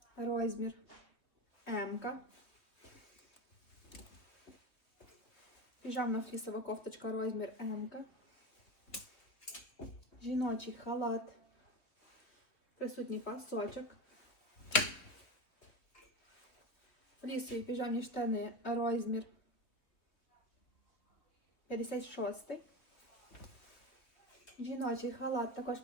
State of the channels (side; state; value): right; late; 3.3 ms